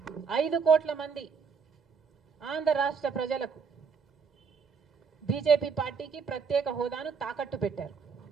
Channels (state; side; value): quieter; left; 5.8 dB